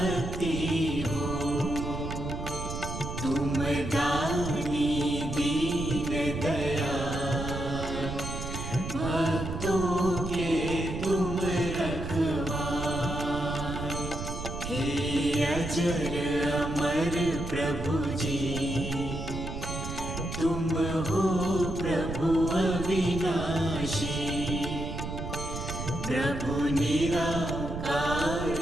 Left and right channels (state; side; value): noise; right; rumble, 6 dB below the sound